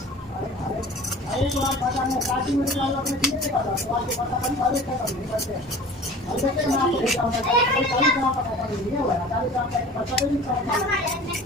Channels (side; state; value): both; normal; correlation 0.42